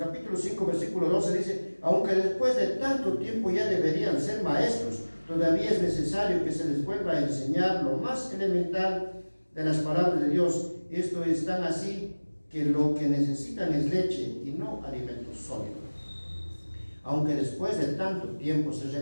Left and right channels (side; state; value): both; inverted; correlation -1.00